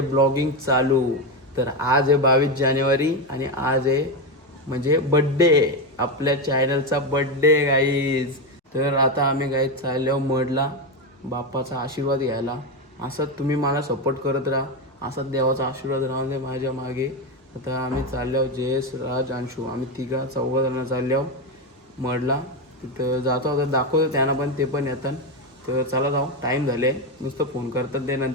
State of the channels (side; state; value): both; normal; correlation 0.11